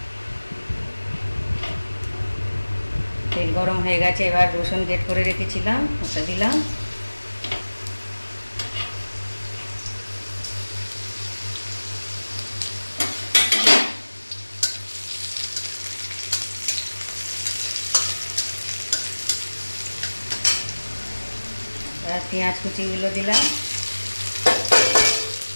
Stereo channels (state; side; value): inverted; both; correlation -1.00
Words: তেল গরম হয়ে গেছে। এবার রসুন গ্রেট করে রেখেছিলাম ওটা দিলাম, আর পেঁয়াজ কুচিগুলো দিলাম,